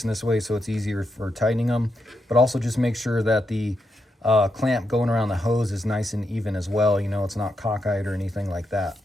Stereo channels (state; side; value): normal; both; correlation 0.83